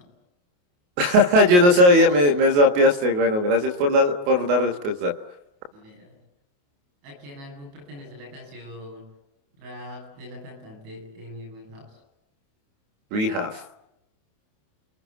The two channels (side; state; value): left; late; 28 ms